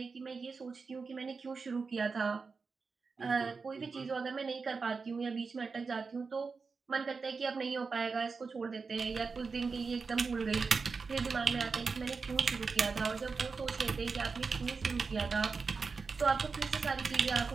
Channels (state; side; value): quieter; left; 4.7 dB